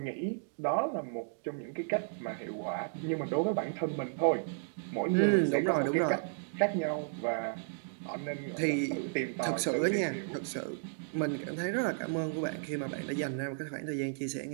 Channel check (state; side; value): silent; left; digital silence